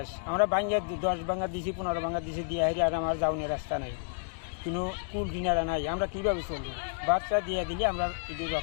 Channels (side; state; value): right; silent; digital silence